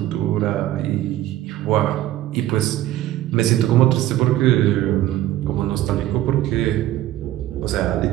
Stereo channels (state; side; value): quieter; left; 14.1 dB